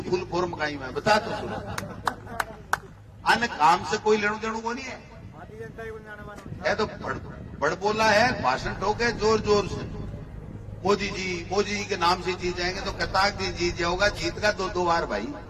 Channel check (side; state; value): both; identical; correlation 1.00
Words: फुल फॉर्म कहीं में बता तो सुनो। अन्य काम से कोई लेणु देणु को नहीं है, तो बड़ बोला है, भाषण ठोके जोर जोर से। मोदी जी के नाम से जीत जाएंगे तो कताक जी जीत जाओगा, जीत का 2 बार भाई।